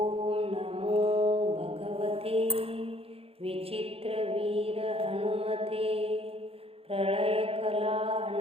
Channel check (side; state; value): left; late; 0.28 ms